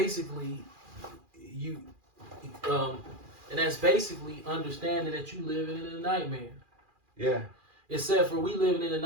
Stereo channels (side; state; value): left; late; 2.4 ms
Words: you um and that's basically understanding that you living in a nightmare. Yeah. Except for we living in a